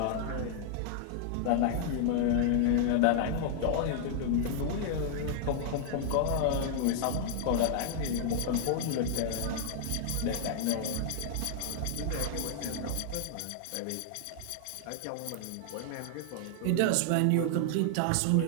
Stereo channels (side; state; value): both; different; correlation -0.01